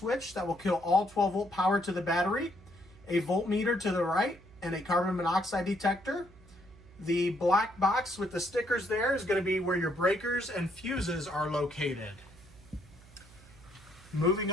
that will kill all 12-volt power to the battery, a voltmeter to the right, and a carbon monoxide detector. The black box with the stickers there is going to be where your breakers and fuses are located. Moving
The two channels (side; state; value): right; noise; hum, 23 dB below the sound